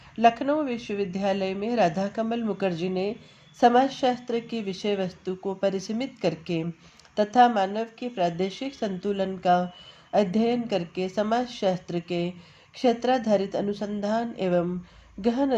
लखनऊ विश्वविद्यालय में राधा कमल मुखर्जी ने समाजशास्त्र की विषय वस्तु को परिसीमित करके तथा मानव के प्रादेशिक संतुलन का अध्ययन करके समाजशास्त्र के क्षेत्राधारित अनुसंधान एवं गहन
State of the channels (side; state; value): both; identical; correlation 1.00